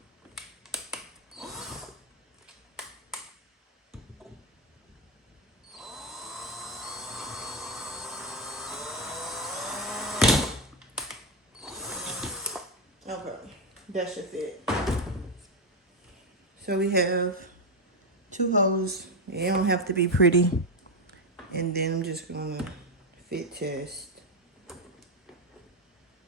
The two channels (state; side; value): normal; both; correlation 0.07